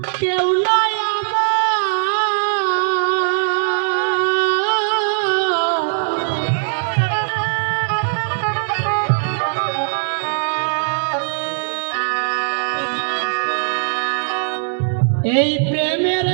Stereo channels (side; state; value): left; silent; digital silence